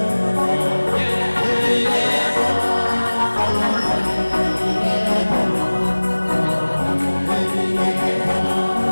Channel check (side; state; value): both; inverted; correlation -1.00